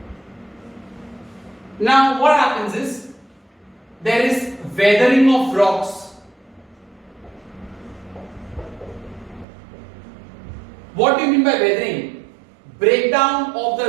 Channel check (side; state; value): left; drops out; at 9.5 s